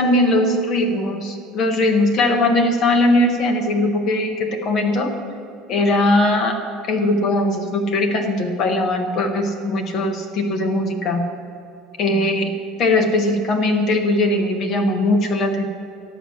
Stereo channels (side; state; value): both; normal; correlation 0.47